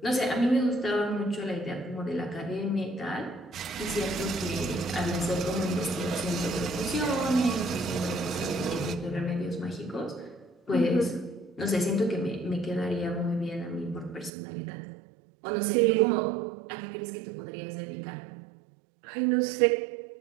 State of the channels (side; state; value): left; drops out; at 14.3 s